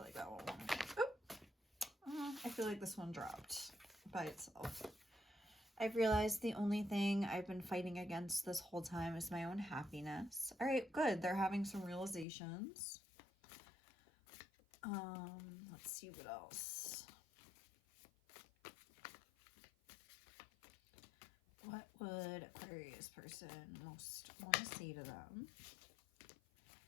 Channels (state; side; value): drops out; right; at 12.2 s